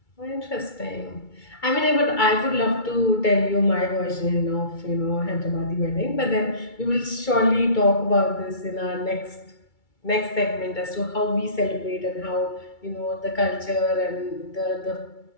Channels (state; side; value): late; right; 2.3 ms